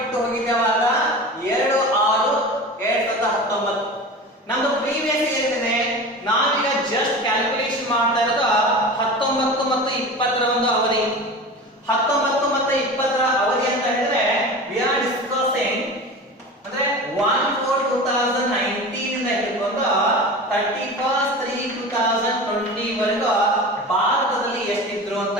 ಹೋಗಿದ್ದೇವಾಗ 2/6/2019. ನಮ್ದು ಪ್ರೀವಿಯಸ್ ಏನಿದೆ, ನಾವೀಗ ಜಸ್ಟ್ ಕ್ಯಾಲ್ಕುಲೇಷನ್ ಮಾಡ್ತಾ ಇರೋದು 19 ಮತ್ತು 20ರ ಒಂದು ಅವಧಿ. 19 ಮತ್ತು 20ರ ಅವಧಿ ಅಂತ ಹೇಳಿದ್ರೆ ವಿ ಆರ್ ಡಿಸ್ಕಸಿಂಗ್ ಅಂದ್ರೆ 1/4/2019 ಇಂದ ಹಿಡಿದುಕೊಂಡು 31/3/2020 ವರೆಗೂ ಭಾರತದಲ್ಲಿ ಎಷ್ಟಿದ್ರು ಅಂತ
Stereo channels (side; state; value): both; normal; correlation 0.32